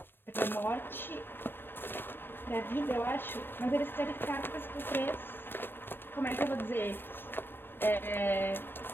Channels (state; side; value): late; right; 0.10 ms